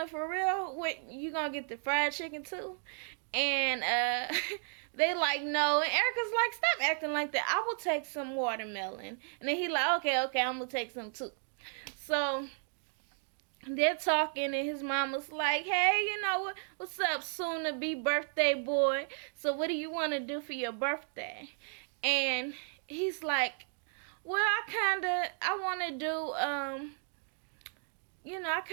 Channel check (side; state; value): left; silent; 55 dB below the other